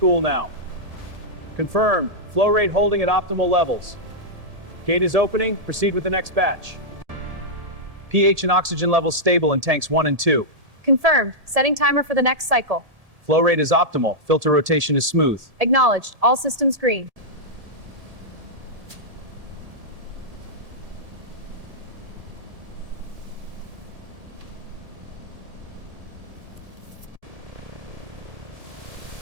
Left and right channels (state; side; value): late; left; 1.7 ms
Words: now. Confirmed, flow rate holding at optimal levels. Gate is opening, proceed with the next batch. pH and oxygen levels stable in tanks 1 and 2. Confirmed. Setting timer for the next cycle. Flow rate is optimal, filter rotation is smooth. Acknowledged. All systems green.